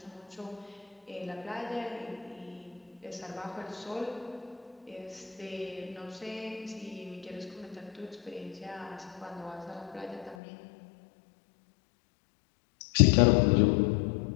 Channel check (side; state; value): right; drops out; at 10.4 s